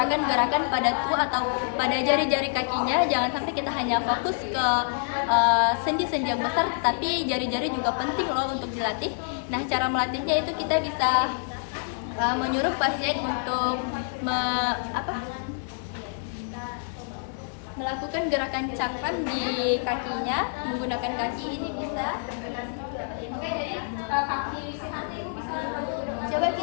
pada atau pada jari-jari kakinya, jangan sampai kita hanya fokus ke sendi-sendi yang besar, tapi jari-jari juga penting loh untuk dilatih. Nah, cara melatihnya itu kita bisa menyuruh pasien untuk melakukan gerakan cakram di kakinya menggunakan kaki. Ini bisa. Oke, jadi coba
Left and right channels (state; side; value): silent; right; digital silence